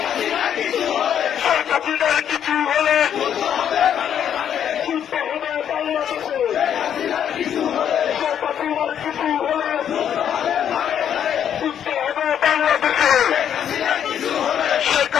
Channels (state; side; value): quieter; right; 9.2 dB